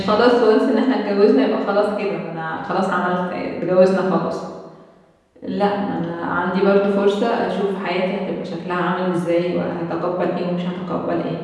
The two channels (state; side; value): identical; both; correlation 1.00